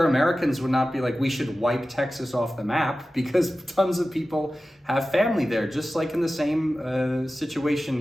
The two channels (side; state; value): both; normal; correlation 0.95